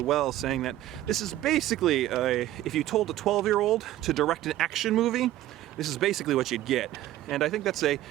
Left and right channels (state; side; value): quieter; left; 14.2 dB